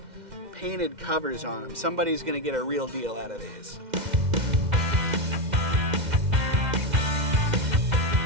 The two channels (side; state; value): left; late; 2.1 ms